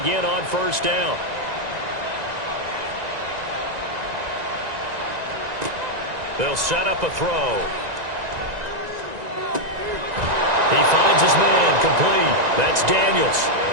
on 1st down. They'll set up a throw. He finds his man, complete. That's Daniels.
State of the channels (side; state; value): left; late; 1.9 ms